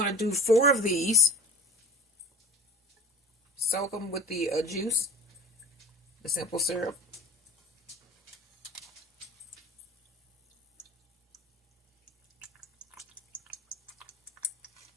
to do 4 of these. Soak them with the juice, the simple syrup.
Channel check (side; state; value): both; normal; correlation 0.42